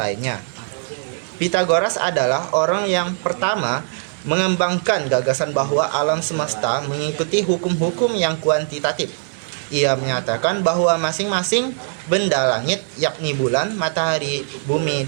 Pythagoras adalah orang yang pertama mengembangkan gagasan bahwa alam semesta mengikuti hukum-hukum yang kuantitatif. Ia menyatakan bahwa masing-masing benda langit, yakni bulan, matahari, bumi,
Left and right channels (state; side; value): silent; left; digital silence